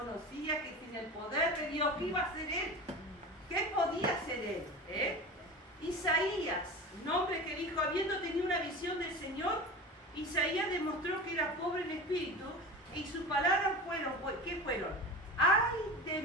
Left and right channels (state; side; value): normal; both; correlation 0.31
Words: que sin el poder de Dios, ¿qué iba a hacer él? ¿Qué podía hacer él? Isaías, un hombre que dijo, habiendo tenido una visión del Señor, Isaías demostró que era pobre en espíritu y sus palabras fueron, ¿qué fueron? ¡Ay de